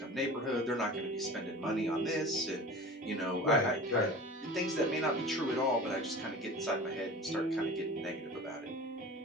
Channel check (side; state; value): both; normal; correlation 0.37